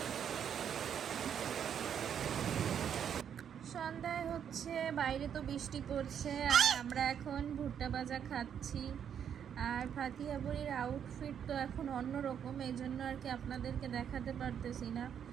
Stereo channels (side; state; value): left; quieter; 8.5 dB